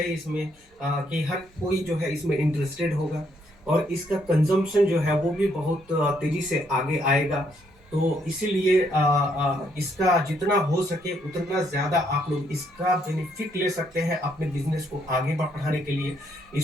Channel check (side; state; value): both; normal; correlation 0.72